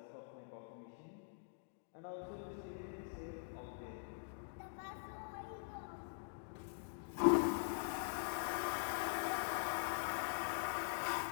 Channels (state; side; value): silent; right; digital silence